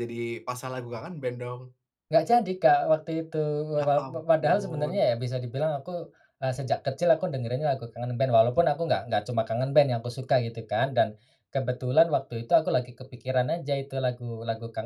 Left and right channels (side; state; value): both; identical; correlation 1.00